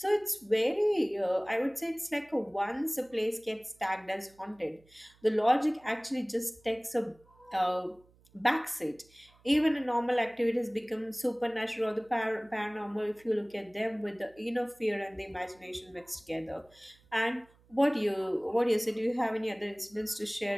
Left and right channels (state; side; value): noise; right; hum, 30 dB below the sound